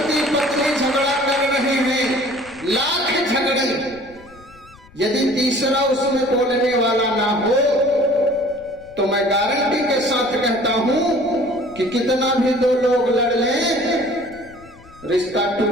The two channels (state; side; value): noise; left; rumble, 24 dB below the sound